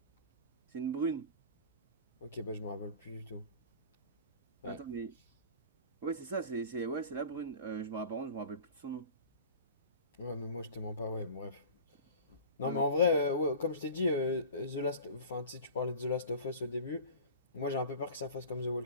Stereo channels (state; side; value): inverted; both; correlation -0.38